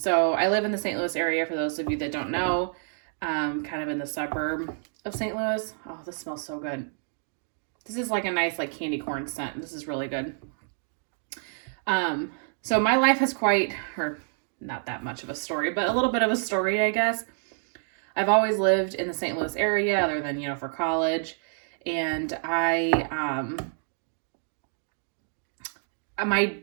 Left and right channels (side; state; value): left; silent; 59 dB below the other